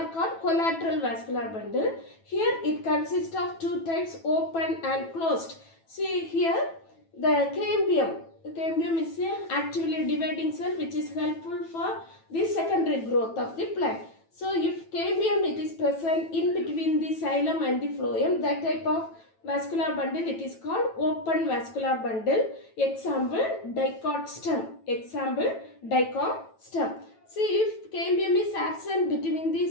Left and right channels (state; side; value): late; right; 9.1 ms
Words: called collateral vascular bundle. Here it consists of two types, open and closed. See here, the cambium. The cambium is an actively dividing cell which is helpful for the secondary growth of the plant. So, if cambium it is present in between the xylem and the phloem, that type of vascular bundle it is called open vascular bundle. Example, dicot stem. Example, dicot stem. See, if cambium is absent between